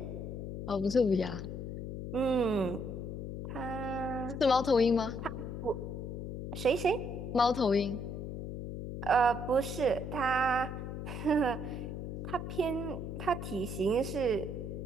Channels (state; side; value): noise; left; hum, 6 dB below the sound